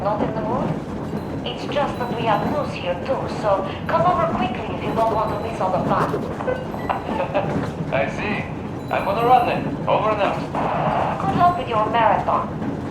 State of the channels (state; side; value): identical; both; correlation 1.00